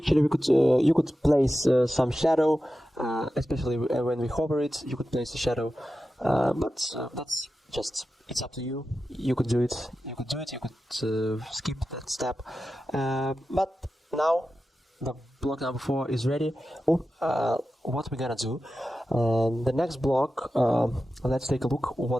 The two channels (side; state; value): both; normal; correlation 0.92